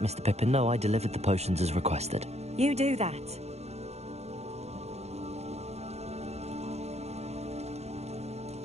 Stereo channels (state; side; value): late; left; 0.31 ms